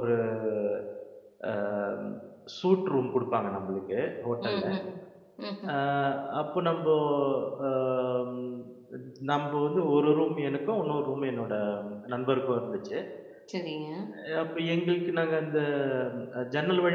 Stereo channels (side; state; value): both; identical; correlation 1.00